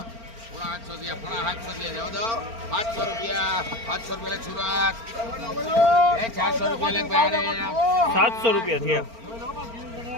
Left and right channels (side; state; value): left; late; 4.4 ms